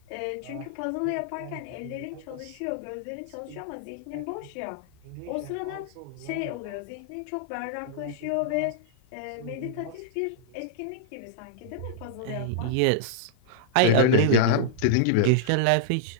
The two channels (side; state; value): both; different; correlation -0.02